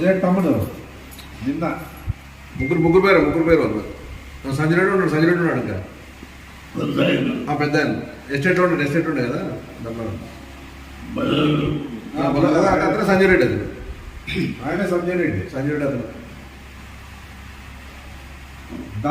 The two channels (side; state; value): both; identical; correlation 1.00